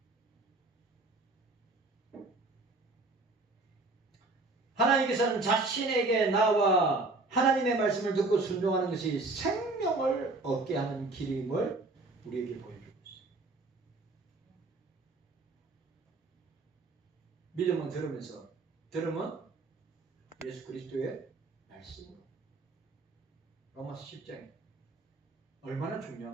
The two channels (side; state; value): left; quieter; 3.3 dB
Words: 하나님께서는 자신에게 나와 하나님의 말씀을 듣고 순종하는 것이 생명을 얻게 하는 길임을 우리에게 보여주고 있어요. 믿음은 들으면서, 들음은 예수 그리스도의 말씀으로. 로마서 10장에 얼마나